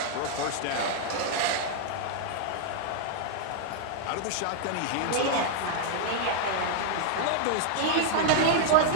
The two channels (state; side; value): different; both; correlation -0.01